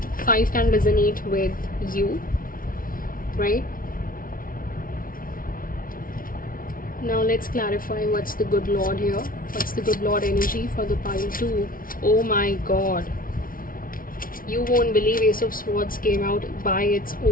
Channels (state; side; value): late; right; 0.41 ms